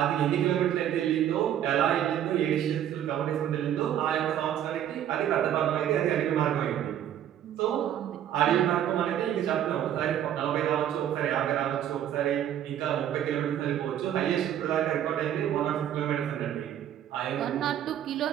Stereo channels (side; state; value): left; quieter; 10.7 dB